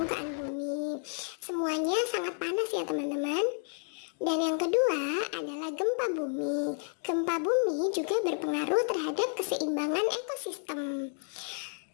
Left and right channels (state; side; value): silent; right; 57 dB below the other